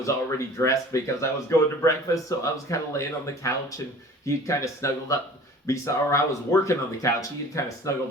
already dressed because I was going to breakfast, so I was kind of laying on the couch, and he'd kind of snuggled up or I was working on the couch. He had kind of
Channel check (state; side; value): normal; both; correlation 0.45